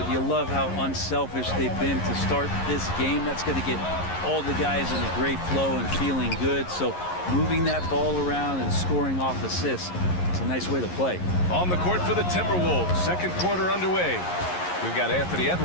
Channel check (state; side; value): late; right; 11 ms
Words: you love how unselfish they've been to start this game. That's going to get all the guys in a great flow and feeling good. So moving that ball around and scoring off assists, it's a nice way to play. On the court for the Timberwolves, second quarter underway. We've got Anthony